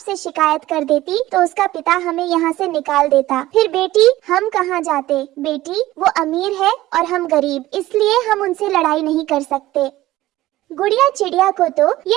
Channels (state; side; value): quieter; left; 16.3 dB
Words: शिकायत कर देती तो उसका पिता हमें यहाँ से निकाल देता। फिर बेटी, हम कहाँ जाते? बेटी, वो अमीर है और हम गरीब, इसलिए हम उनसे लड़ाई नहीं कर सकते। गुड़िया चिड़िया को तो